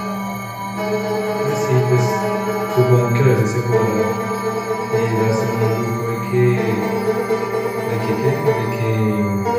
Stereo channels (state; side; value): identical; both; correlation 1.00